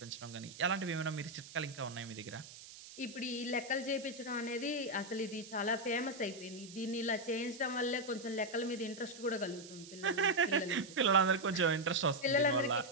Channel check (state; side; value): noise; right; hiss, 16 dB below the sound